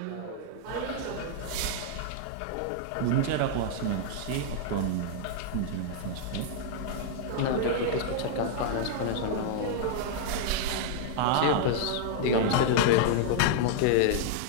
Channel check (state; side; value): different; both; correlation -0.01